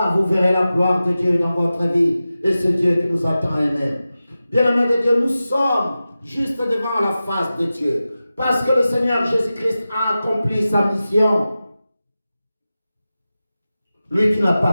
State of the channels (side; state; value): both; inverted; correlation -0.94